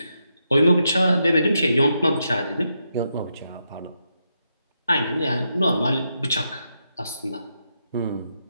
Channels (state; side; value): inverted; both; correlation -0.83